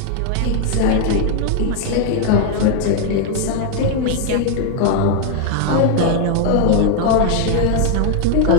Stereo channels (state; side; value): different; both; correlation 0.00